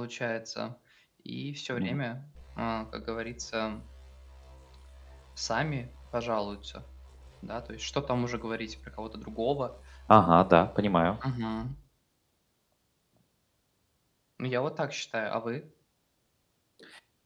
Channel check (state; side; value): identical; both; correlation 1.00